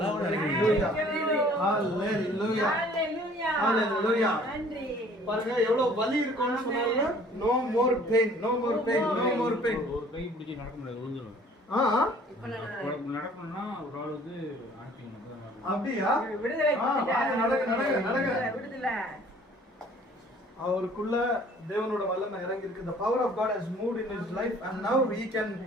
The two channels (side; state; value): both; normal; correlation 0.54